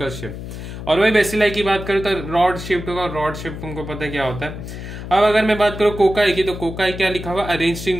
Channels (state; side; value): noise; left; hum, 9 dB below the sound